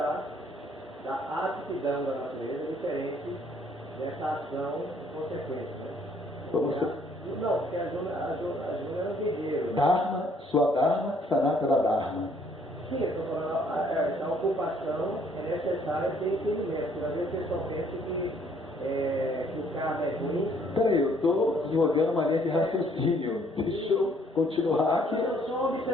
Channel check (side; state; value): both; normal; correlation 0.63